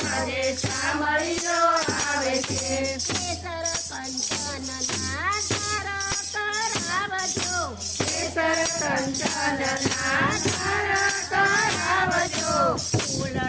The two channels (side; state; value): both; identical; correlation 1.00